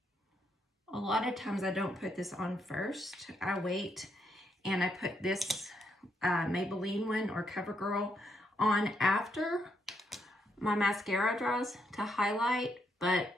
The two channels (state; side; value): normal; both; correlation 0.77